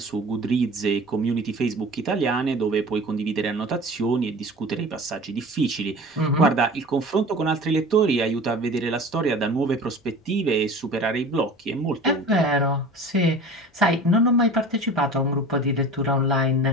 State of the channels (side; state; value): both; normal; correlation 0.39